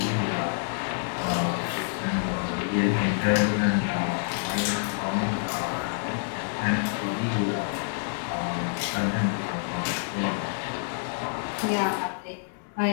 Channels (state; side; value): silent; right; digital silence